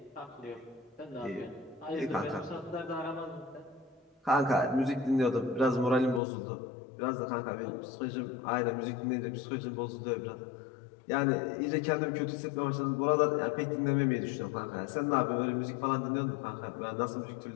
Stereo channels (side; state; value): right; drops out; at 6.2 s